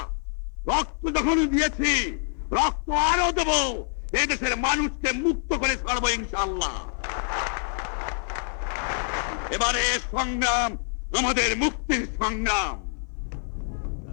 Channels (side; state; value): right; silent; 56 dB below the other